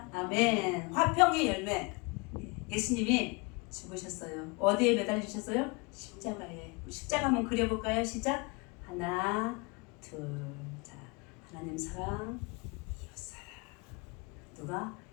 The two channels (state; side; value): quieter; right; 28.6 dB